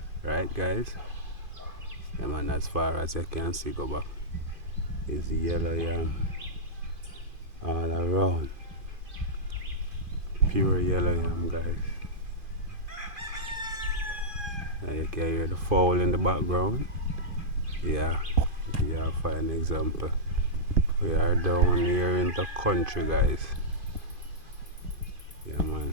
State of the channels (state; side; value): late; left; 2.5 ms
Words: right, guys? Yeah, man. As far as you can see, go back is yellow yam all around. Pure yellow yam, guys. And you can hear the fowl in the background. Yeah, yeah, for an example. We are down here in the country, guys. Yeah, man.